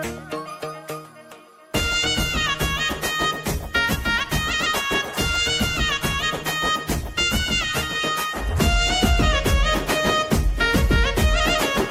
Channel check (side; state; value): both; identical; correlation 1.00